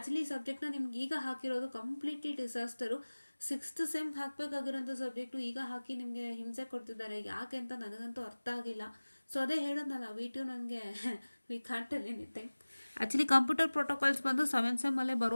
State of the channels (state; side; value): inverted; both; correlation -1.00